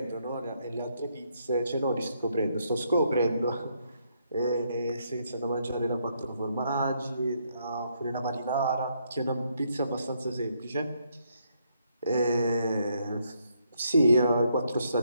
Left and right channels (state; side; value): inverted; both; correlation -0.74